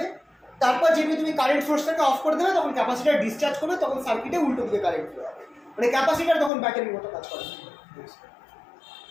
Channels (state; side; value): drops out; right; at 6.5 s